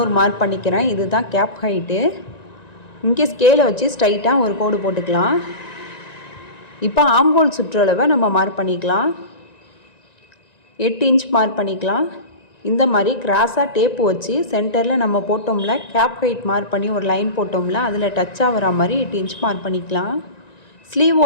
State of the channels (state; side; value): late; right; 1.9 ms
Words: மார்க் பண்ணிக்கிறேன். இதுதான் கேப் ஹைட்டு. இங்கே ஸ்கேலை வச்சு ஸ்ட்ரைட்டாக ஒரு கோடு போட்டுக்கலாம். இப்போ ஆம்ஹோல் சுற்றளவை நம்ம மார்க் பண்ணிக்கலாம். 8 இன்ச் மார்க் பண்ணிக்கலாம். இந்த மாதிரி கிராஸாக டேப்பு வச்சு சென்டரில் நம்ம போட்டோம்ல, கேப் ஹைட் மார்க் பண்ணி ஒரு லைன் போட்டோம்ல, அதில் டச் ஆகிற மாதிரி 8 இன்ச் மார்க் பண்ணிக்கலாம்.